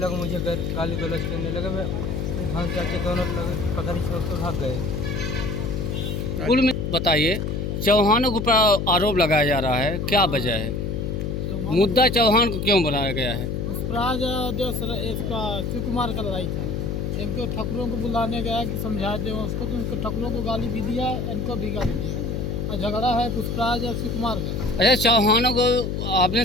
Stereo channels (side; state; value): left; noise; hum, 2 dB below the sound